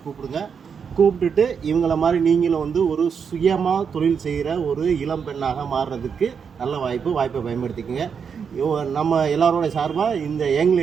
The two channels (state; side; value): quieter; left; 6.6 dB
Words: கூப்பிடுங்க. கூப்பிட்டுட்டு இவங்கள மாதிரி நீங்களும் வந்து ஒரு சுயமாக தொழில் செய்கிற ஒரு இளம் பெண்ணாக மாறுறதுக்கு நல்ல வாய்ப்பை பயன்படுத்திக்கோங்க. நம்ம எல்லாரோட சார்பாக இந்த யங்